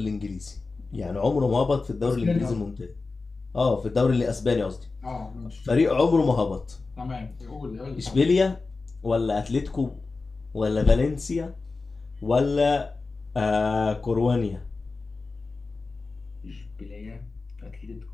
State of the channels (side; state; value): right; quieter; 3.9 dB